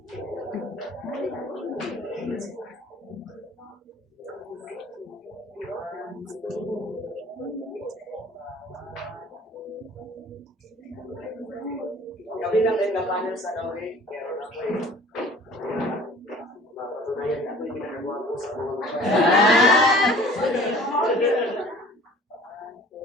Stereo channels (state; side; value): normal; both; correlation 0.48